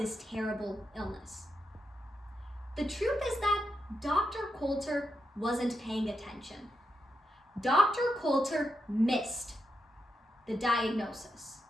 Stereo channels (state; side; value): normal; both; correlation 0.83